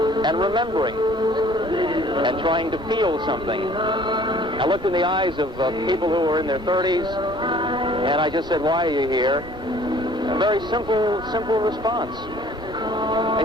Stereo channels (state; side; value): noise; right; hum, 21 dB below the sound